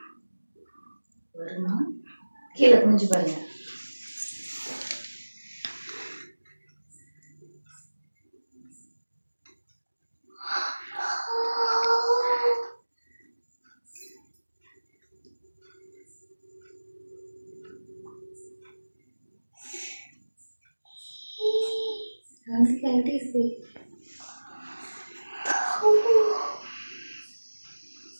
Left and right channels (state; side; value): inverted; both; correlation -1.00